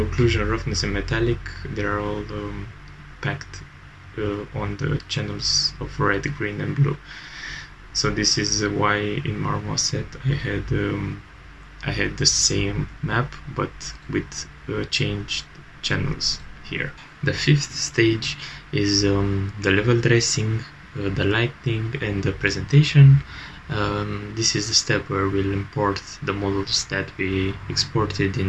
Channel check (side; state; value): both; identical; correlation 1.00